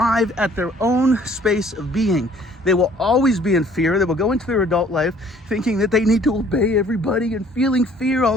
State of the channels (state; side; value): normal; both; correlation 0.57